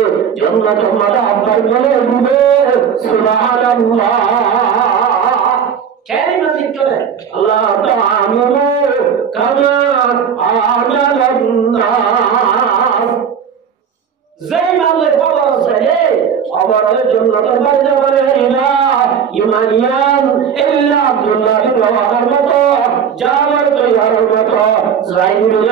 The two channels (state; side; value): quieter; left; 7.5 dB